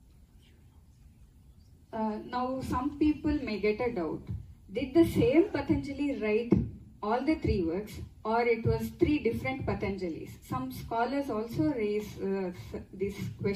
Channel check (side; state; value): both; identical; correlation 1.00